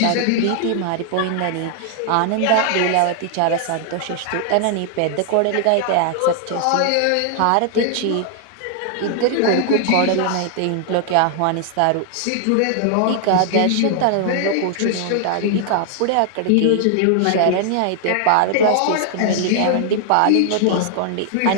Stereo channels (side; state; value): both; different; correlation 0.00